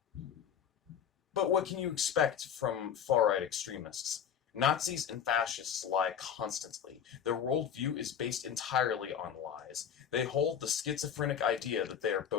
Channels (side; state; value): right; quieter; 8.3 dB